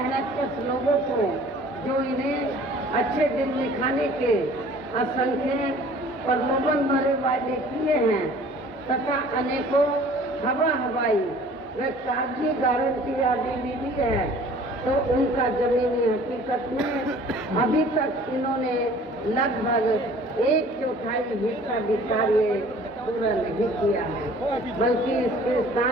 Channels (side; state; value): both; normal; correlation 0.50